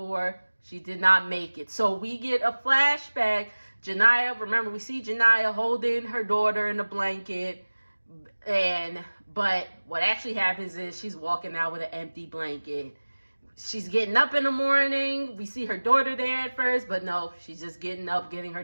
she did not make it. So we get a flashback. Janaya, remember, we see Janaya holding her daughter in a blanket, but what actually happens is she's walking out with an empty blanket. She's getting up in the morning. We see her daughter there at first, but no, she's just getting up, getting her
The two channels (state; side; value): inverted; both; correlation -1.00